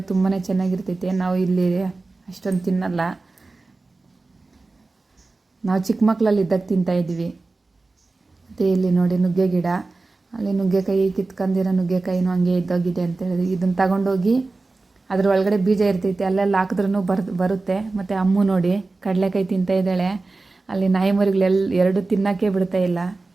ತುಂಬಾ ಚೆನ್ನಾಗಿರ್ತೈತೆ. ನಾವು ಇಲ್ಲಿ ಅಷ್ಟೊಂದು ತಿನ್ನಲ್ಲ. ನಾವು ಚಿಕ್ಕ ಮಕ್ಕಳಲ್ಲಿ ಇದ್ದಾಗ ತಿಂತಾಯಿದ್ವಿ. ಮತ್ತು ಇಲ್ಲಿ ನೋಡಿ ನುಗ್ಗೆ ಗಿಡ. ಅಲ್ಲಿ ನುಗ್ಗೆಕಾಯಿ ಕಿತ್ಕೊಂಡಿರೋ ನುಗ್ಗೆಕಾಯಿನೂ ಹಂಗೆ ಇದ್ದೋಗಿದೆ ಅಂತ ಹೇಳಿದ್ವಿ. ಇದನ್ನು ತಗೊಂಡೋಗಿ ಅದ್ರ ಒಳಗಡೆ ಬೀಜ ಇರ್ತೈತೆ, ಅಲ್ಲೆಲ್ಲ ಹಾಕಿದ್ರೂ ಬರುತ್ತೆ. ಮತ್ತು ಅಮ್ಮು ನೋಡಿ ಕಡಲೆಕಾಯಿ ತಿಂತಾಯಿದ್ದಾಳೆ. ಅಲ್ಲಿ ನಾಯಿ ಮರಿಗಳೆಲ್ಲ 2 ತಿನ್ನೋಕ್ಕೆ ಬಿಡ್ತಾ ಇಲ್ಲ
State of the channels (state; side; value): quieter; left; 3.5 dB